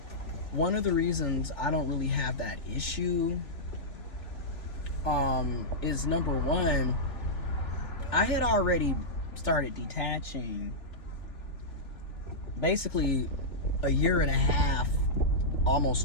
One of the reasons I don't really have that issue is, number one, I had already started detaching basically a year and a half,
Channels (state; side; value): late; right; 3.4 ms